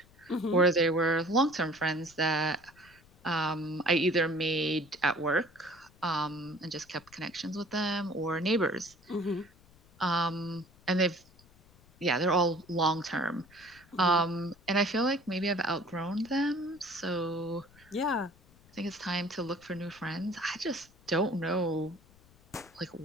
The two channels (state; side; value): noise; left; rumble, 27 dB below the sound